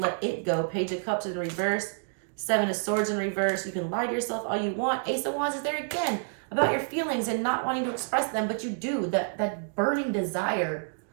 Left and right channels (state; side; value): silent; left; digital silence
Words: it go. Page of Cups in reverse. 7 of Swords in reverse. You can lie to yourself all you want. Ace of Wands is there again about your feelings and not wanting to express them, but you do. That burning desire.